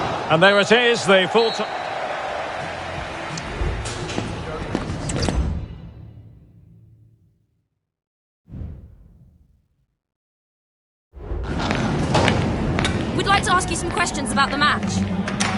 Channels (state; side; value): identical; both; correlation 1.00